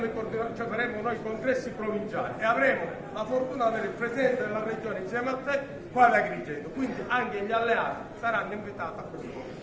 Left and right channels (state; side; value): identical; both; correlation 1.00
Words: noi i congressi provinciali e avremo la fortuna di avere il Presidente della Regione insieme a te qua ad Agrigento, quindi anche gli alleati saranno invitati a questo.